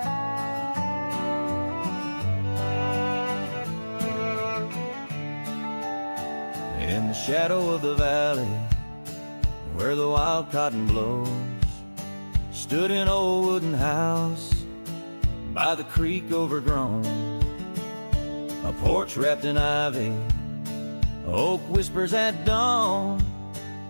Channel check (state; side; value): inverted; both; correlation -1.00